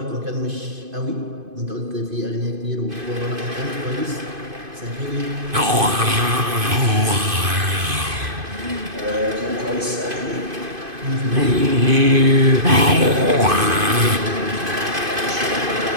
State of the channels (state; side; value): late; left; 2.5 ms